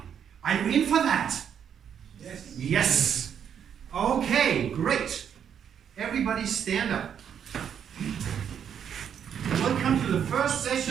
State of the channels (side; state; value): left; quieter; 8.4 dB